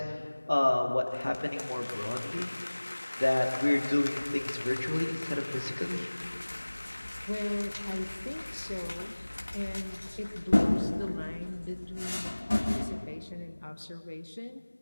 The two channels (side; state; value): both; inverted; correlation -1.00